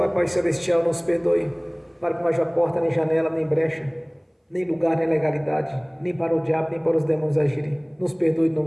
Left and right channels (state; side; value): identical; both; correlation 1.00